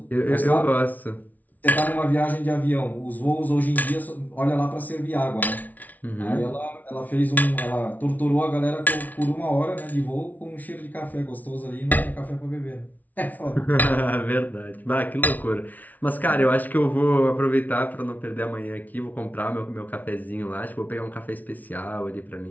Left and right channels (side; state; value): right; late; 0.077 ms